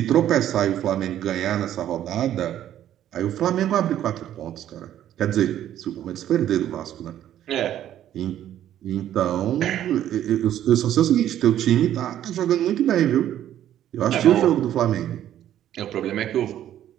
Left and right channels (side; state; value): left; quieter; 11.5 dB